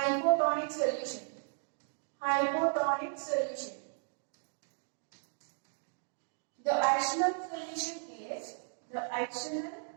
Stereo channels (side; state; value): left; silent; digital silence